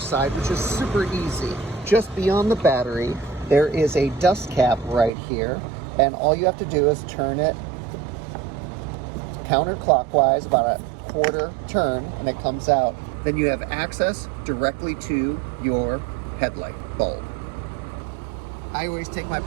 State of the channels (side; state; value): left; drops out; at 5.1 s